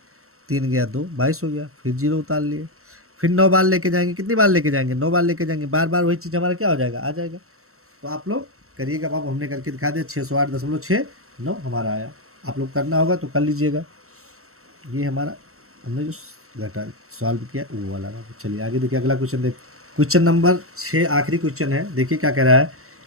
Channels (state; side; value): late; left; 0.63 ms